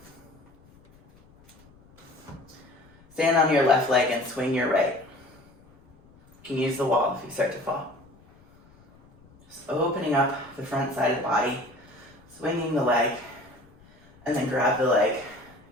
Stand on your left leg and swing your right. You can use the wall if you start to fall. Just opening up the front side of the body, swinging the leg, and then grab the leg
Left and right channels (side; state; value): left; noise; rumble, 27 dB below the sound